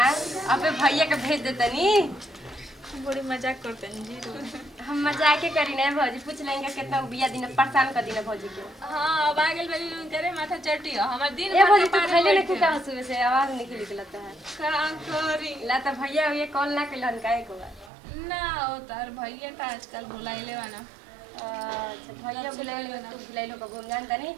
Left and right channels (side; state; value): left; drops out; at 17.9 s